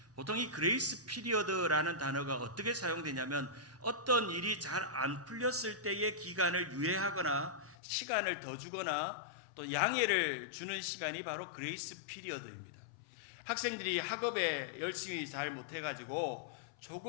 보통 이 그레이스 피리어드라는 단어가 어떻게 사용되냐면 어떤 일이 잘 안 풀렸을 때의 기간을 유예하거나 시간을 더 주거나 또 양해를 주는 시간이 바로 그레이스 피리어드입니다. 학생들이 학업에 열심히 잘 못해가지고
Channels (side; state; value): right; drops out; at 7.8 s